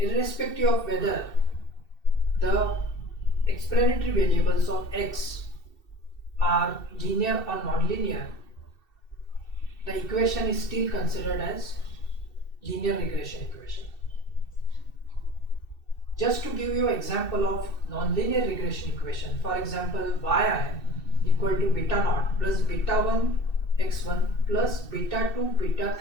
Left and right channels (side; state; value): right; late; 2.7 ms